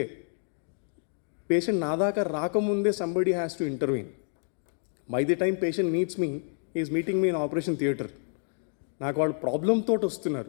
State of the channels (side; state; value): right; silent; 59 dB below the other